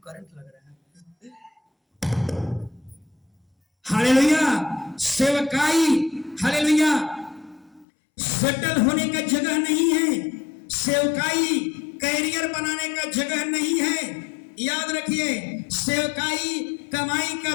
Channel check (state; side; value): drops out; right; at 7.9 s